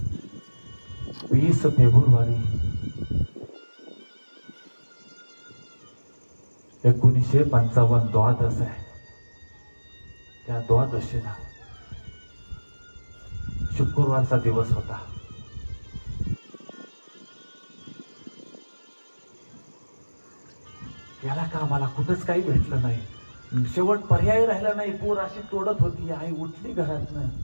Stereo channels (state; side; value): inverted; both; correlation -1.00